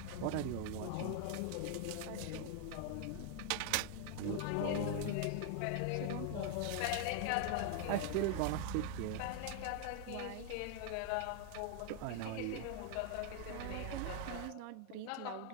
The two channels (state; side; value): different; both; correlation 0.00